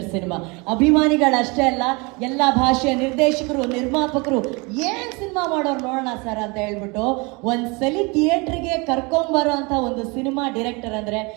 cinema. ಅಭಿಮಾನಿಗಳಷ್ಟೇ ಅಲ್ಲ, ಎಲ್ಲ ಭಾಷೆಯ ನಿರ್ದೇಶಕರು, ನಿರ್ಮಾಪಕರು ಏನ್ ಸಿನಿಮಾ ಮಾಡೋರು ನೋಡೋಣ ಸರ್ ಅಂತ ಹೇಳ್ಬಿಟ್ಟು ಒಂದ್ಸಲಿ ಥಿಯೇಟ್ರಿಗೆ ಕರ್ಕೊಂಬರೋ ಅಂತ ಒಂದು ಸಿನಿಮಾ ಡೈರೆಕ್ಟರ್ ಅಂದ್ರೆ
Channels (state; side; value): quieter; left; 28.2 dB